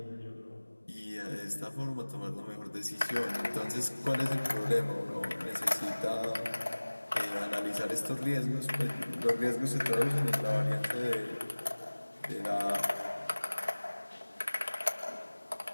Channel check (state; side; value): inverted; both; correlation -1.00